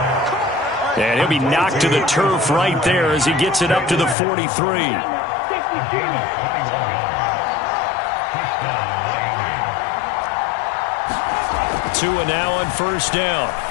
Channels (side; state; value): right; drops out; at 4.2 s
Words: And he'll be knocked to the turf right there as he gets it up to the 43. Tua now on first down.